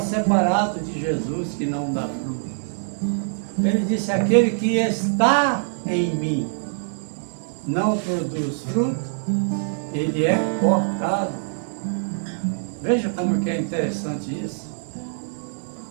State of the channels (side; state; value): left; silent; 63 dB below the other